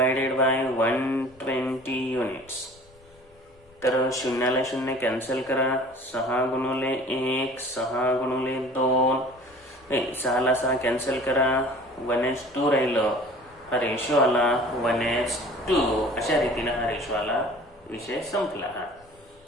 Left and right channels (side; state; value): left; noise; rumble, 29 dB below the sound